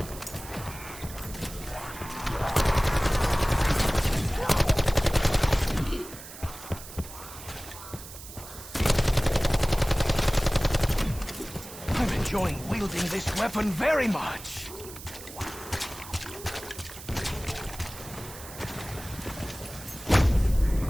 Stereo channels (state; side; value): noise; right; hiss, 14 dB below the sound